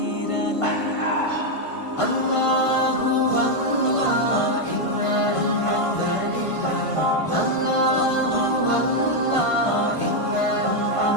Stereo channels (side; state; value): right; late; 1.5 ms